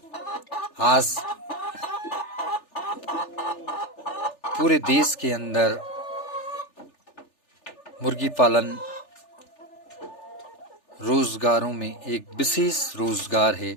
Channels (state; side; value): late; right; 3.4 ms